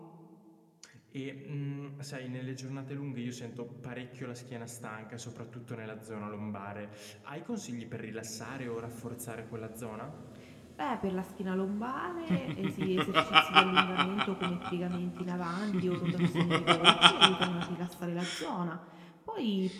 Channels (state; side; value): identical; both; correlation 1.00